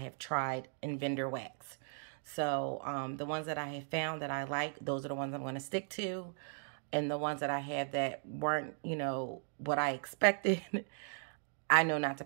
tried in vendor wax. So the ones that I have found that I like, those are the ones I'm going to stick to. And the ones that I have that weren't, you know, what I expected, I know not to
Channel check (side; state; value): left; silent; 53 dB below the other